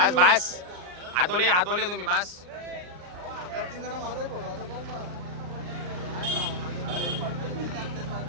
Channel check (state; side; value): late; left; 39 ms